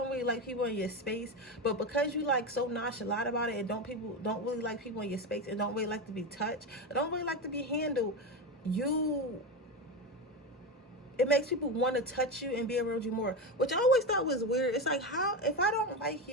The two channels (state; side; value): normal; both; correlation 0.17